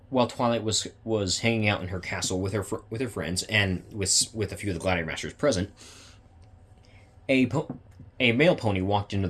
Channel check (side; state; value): both; identical; correlation 1.00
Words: Twilight was hanging out in her castle with her friends and with a few of the Gladiator Masters present, a male pony walked into